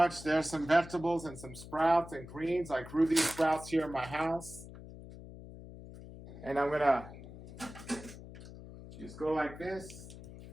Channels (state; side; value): noise; left; hum, 15 dB below the sound